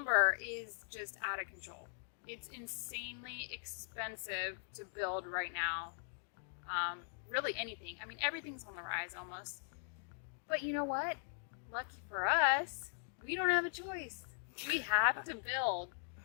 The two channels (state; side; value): silent; right; digital silence